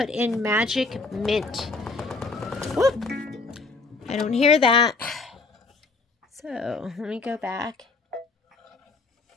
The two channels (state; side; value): quieter; right; 3.8 dB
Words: in magic mint. Whoop. I don't hear that. So let me go back.